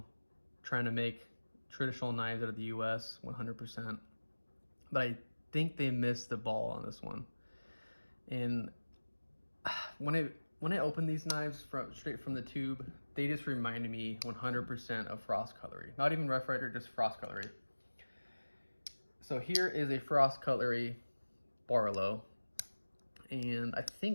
trying to make traditional knives out of the US 100%. But I think they missed the ball on this one. And when I opened these knives straight from the tube, they just reminded me 100% of Frost Cutlery. Not even Rough Rider, just Frost Cutlery. So here is a Frost Cutlery Barlow, and I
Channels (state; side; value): inverted; both; correlation -1.00